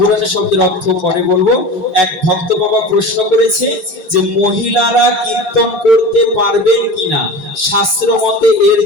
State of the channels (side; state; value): left; late; 5.4 ms